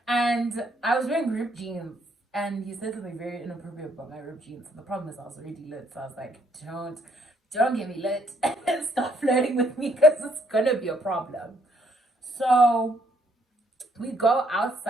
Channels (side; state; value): both; normal; correlation 0.69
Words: And I was wearing ripped jeans. And he said something very inappropriate about my ripped jeans. And the problem is I was already lit. So I was like, don't get me lit. Stop flirting with me because it's gonna be a problem. So we go